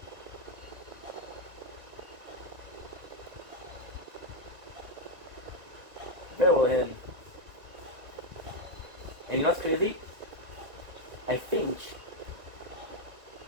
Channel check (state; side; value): late; left; 1.5 ms